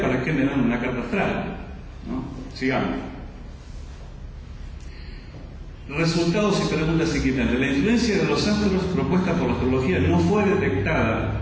¿para qué me dan una carta astral? ¿No? Sigamos. Resultados y preguntas inquietantes. La influencia de los astros propuesta por la astrología no fue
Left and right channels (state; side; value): identical; both; correlation 1.00